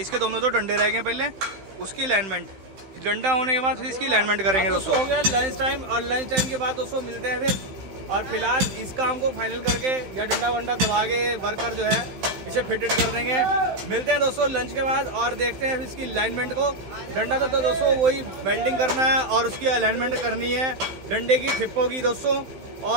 दोनों तो डंडे रह गए पहले, उसकी अलाइनमेंट, डंडा होने के बाद फिर इसकी अलाइनमेंट करेंगे दोस्तों। हो गया लंच टाइम, और लंच टाइम के बाद दोस्तों मिलते हैं फिर। और फिलहाल इस काम को फाइनल करके या डंडा वंडा दबा के वर्कर जो है इसे फिटेड कर देंगे। मिलते हैं दोस्तों लंच के बाद और देखते हैं इसकी अलाइनमेंट को। डंडा तो दोस्तों वही वेल्डिंग करना है और उसकी अलाइनमेंट करनी है, डंडे की ठिप्पों की दोस्तों,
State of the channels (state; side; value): late; left; 15 ms